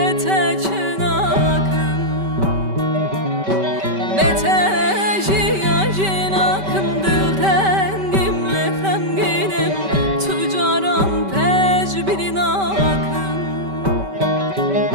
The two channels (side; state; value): left; late; 5.2 ms